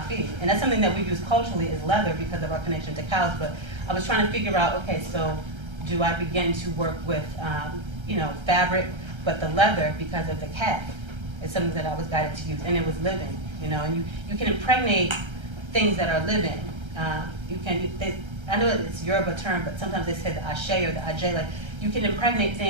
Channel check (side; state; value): left; late; 1.3 ms